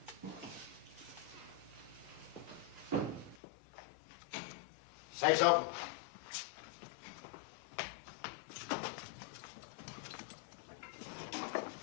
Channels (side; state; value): right; drops out; at 3.4 s